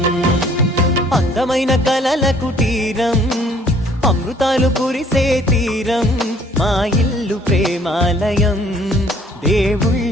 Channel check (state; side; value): normal; both; correlation 0.58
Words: అందమైన కలల కుటీరం, అమృతాలు కురిసే తీరం, మా ఇల్లు ప్రేమాలయం,